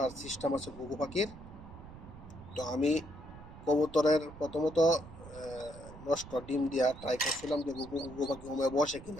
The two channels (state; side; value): noise; right; rumble, 16 dB below the sound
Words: সিস্টেম আছে ঘুঘু পাখির, তো আমি কবুতরের প্রথমত নষ্ট ডিম দিয়া ট্রাই করছিলাম যে ঘুঘু পাখি হুমে বসে